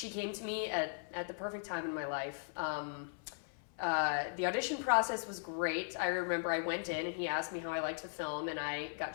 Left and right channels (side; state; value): right; silent; 52 dB below the other